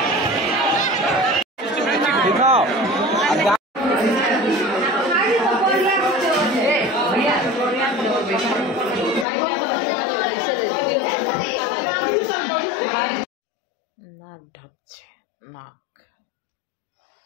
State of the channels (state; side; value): drops out; right; at 9.2 s